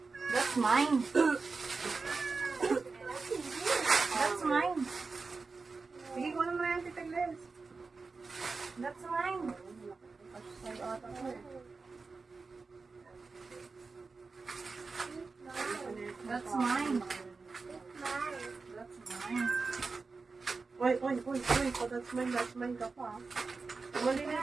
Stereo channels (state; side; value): quieter; left; 4.3 dB